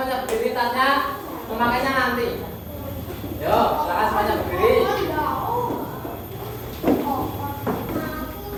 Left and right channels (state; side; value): identical; both; correlation 1.00